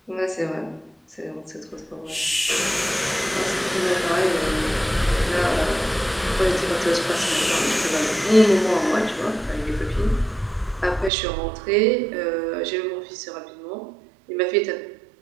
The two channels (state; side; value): drops out; left; at 11.1 s